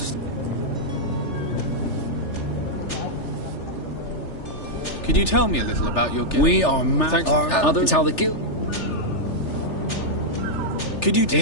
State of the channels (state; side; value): late; right; 3.4 ms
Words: Could you tell me a little about your guild? We are others. It's how the guild... Could you...